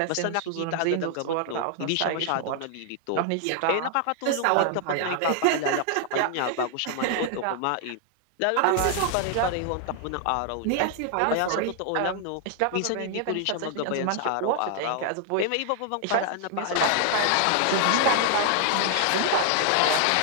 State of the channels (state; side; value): different; both; correlation 0.00